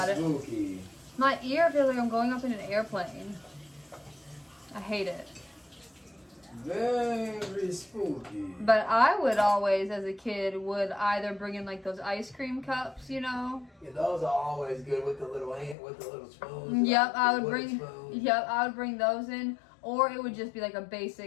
spooky. it. My ear feels like I'm going up in an airplane. I hate it. Very spooky. But I would always, as a kid, would either bring in like those ice cream cups, you know. Yeah, those are always good with the little spoons. Yep, I would wooden bring. spoons. Yep, I would bring those in, or it would just be like a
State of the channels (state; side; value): drops out; right; at 15.8 s